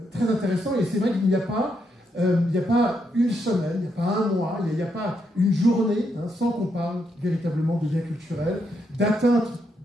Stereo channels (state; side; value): normal; both; correlation 0.79